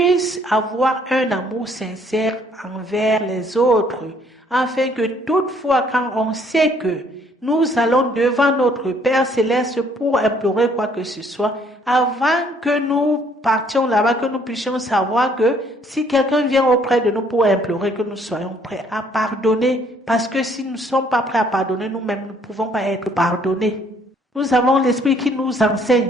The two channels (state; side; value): normal; both; correlation 0.63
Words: avoir un amour sincère envers les autres, afin que toutefois quand on sait que nous allons devant notre Père Céleste pour implorer quoi que ce soit, avant que nous partions là-bas, que nous puissions savoir que si quelqu'un vient auprès de nous pour implorer, que nous soyons prêts à pardonner. Parce que si nous ne sommes pas prêts à pardonner, nous-mêmes ne pouvons pas être pardonnés. Nous avons l'Esprit qui nous enseigne.